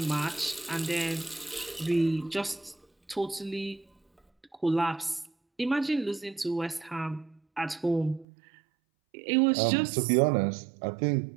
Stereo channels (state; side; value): drops out; left; at 8.2 s